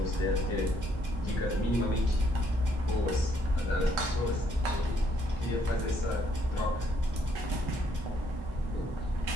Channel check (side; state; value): both; normal; correlation 0.70